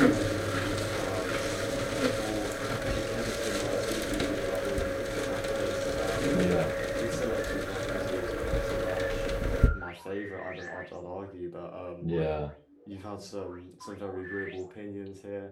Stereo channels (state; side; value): identical; both; correlation 1.00